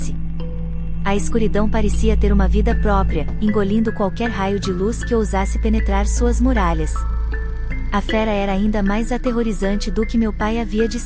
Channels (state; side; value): identical; both; correlation 1.00